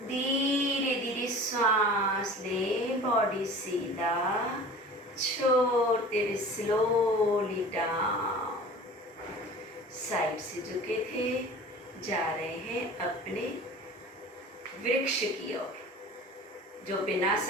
धीरे धीरे श्वास ले, बॉडी सीधा, छोड़ते हुए स्लोली डाउन। साइड से झुके थे, जा रहे हैं अपने वृक्ष की ओर। जो बिना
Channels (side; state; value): both; normal; correlation 0.41